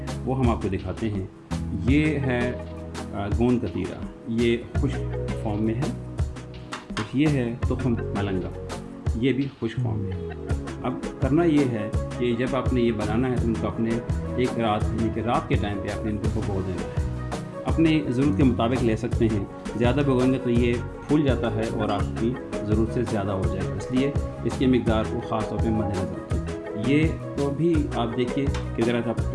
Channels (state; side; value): identical; both; correlation 1.00